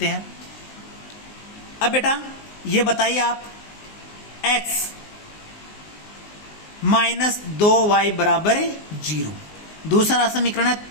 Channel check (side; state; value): right; late; 19 ms